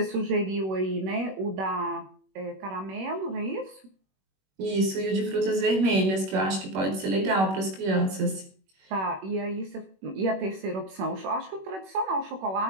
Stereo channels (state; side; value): late; left; 21 ms